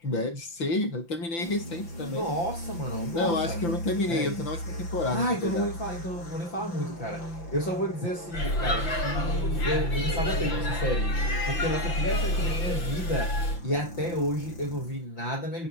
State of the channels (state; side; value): late; right; 5.9 ms